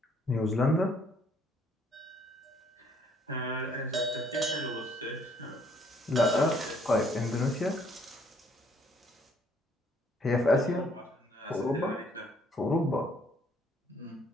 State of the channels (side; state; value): both; normal; correlation 0.64